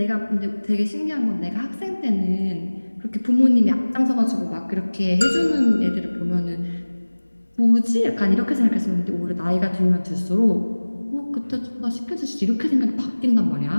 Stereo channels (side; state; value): both; inverted; correlation -1.00